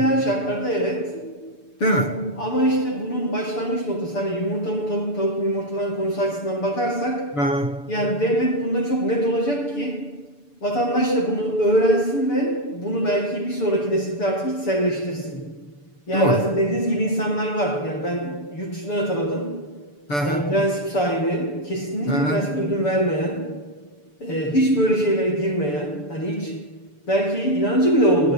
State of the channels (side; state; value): right; late; 6.9 ms